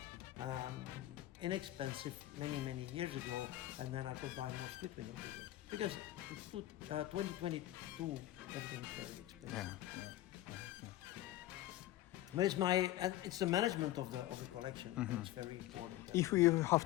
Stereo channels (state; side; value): quieter; right; 15.1 dB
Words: inexpensive many years ago, and then I could buy more split window vehicles because 2022 everything's very expensive. yeah. But it's the management of the collection. It's very important. If you have